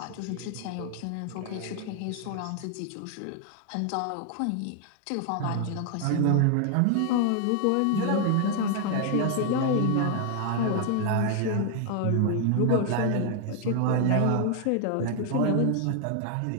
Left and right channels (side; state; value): both; different; correlation 0.00